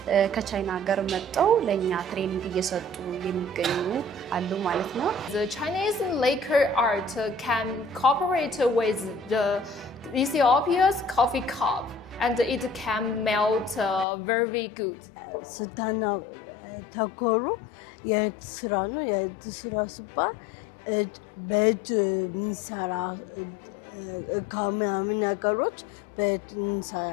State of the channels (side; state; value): right; drops out; at 14.1 s